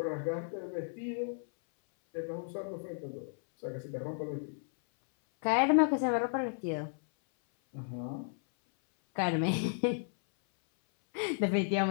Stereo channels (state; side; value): silent; right; 55 dB below the other